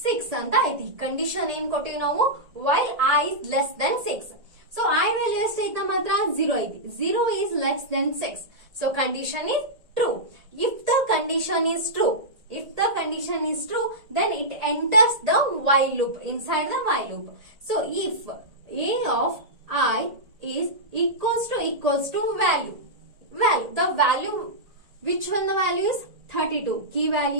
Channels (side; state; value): left; late; 1.8 ms